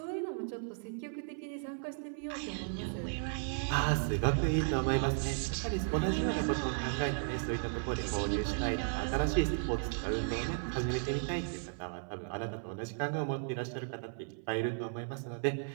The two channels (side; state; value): left; silent; 54 dB below the other